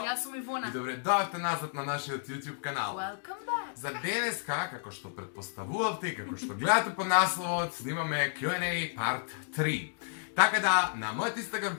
Јас сум Ивона. И добре дојавте назад на нашиот YouTube канал. Welcome back. За денеска, како што претпоставувавте и како што гледате по насловот, снимаме Q&A part 3. Така да, на мојот Instagram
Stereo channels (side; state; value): right; silent; digital silence